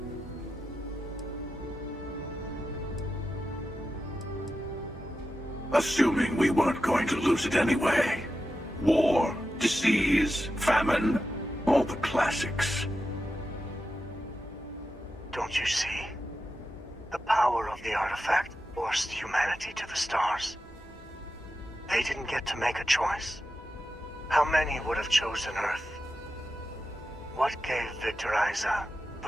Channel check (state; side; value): normal; both; correlation 0.90